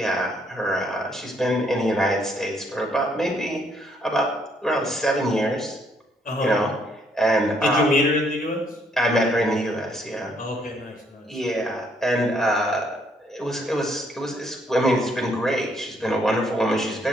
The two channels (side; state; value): both; normal; correlation 0.69